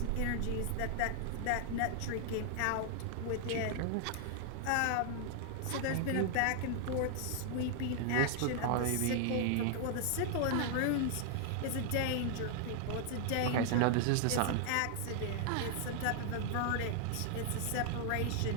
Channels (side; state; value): both; different; correlation 0.00